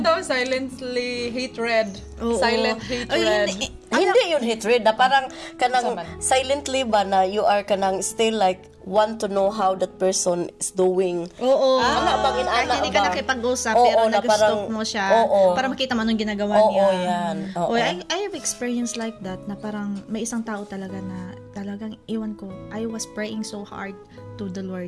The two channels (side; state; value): both; identical; correlation 1.00